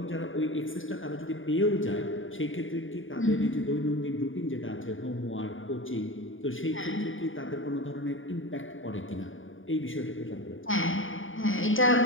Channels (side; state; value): right; late; 0.57 ms